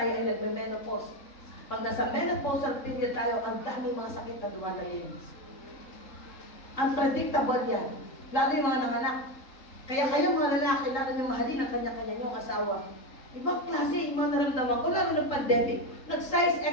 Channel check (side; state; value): right; late; 3.7 ms